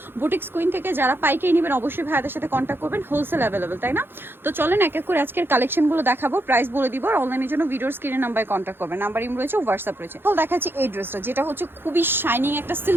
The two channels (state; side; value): late; left; 0.10 ms